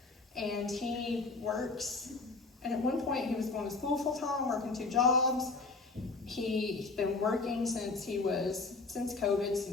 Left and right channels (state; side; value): quieter; right; 3.8 dB